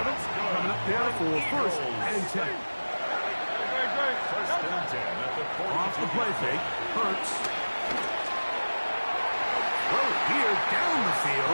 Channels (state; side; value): inverted; both; correlation -1.00